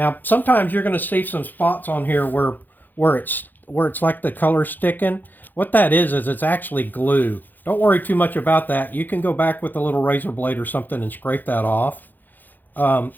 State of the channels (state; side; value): late; right; 0.087 ms